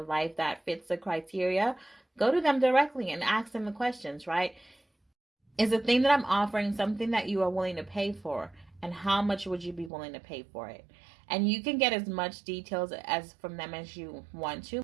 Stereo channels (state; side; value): drops out; left; at 9.9 s